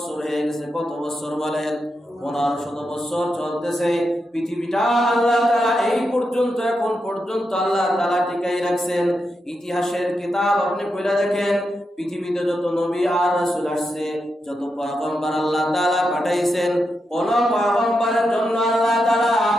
হয়ে গেছে। কত বছর বলেন? 1500 বছর চলতেছে। পৃথিবীটা আল্লাহ তাআলা এই পর্যন্ত এখন পর্যন্ত আল্লাহ তাআলা টিকাই রাখছেন। ইতিহাসের কিতাব আপনি পড়ে দেখেন, পৃথিবীতে যত নবী আর রাসূল আসছে, যত পয়গম্বর আল্লাহ তাআলা পাঠাইছেন, কোন পয়গম্বরের জন্য আল্লাহ তাআলা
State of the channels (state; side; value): normal; both; correlation 0.86